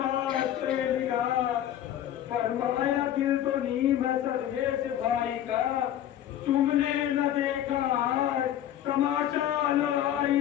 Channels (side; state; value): right; quieter; 11.4 dB